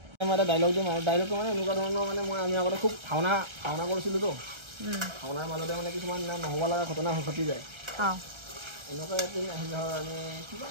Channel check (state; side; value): late; left; 1.3 ms